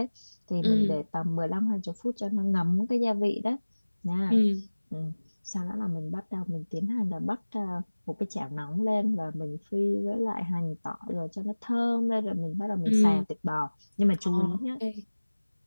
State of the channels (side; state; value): both; inverted; correlation -1.00